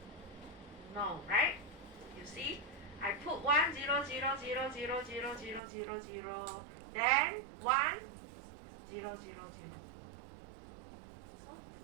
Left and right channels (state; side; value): drops out; left; at 5.6 s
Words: No, right? You see, I put 1, 0, 0, 0, 0, 0, 0, 0, 0, then 1, 0, 0, 0. So